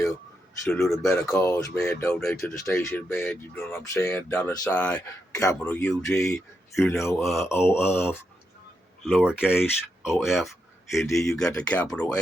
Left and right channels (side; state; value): both; normal; correlation 0.84